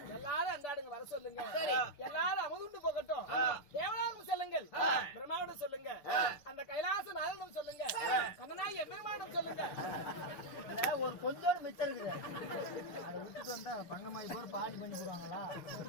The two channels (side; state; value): right; late; 6.9 ms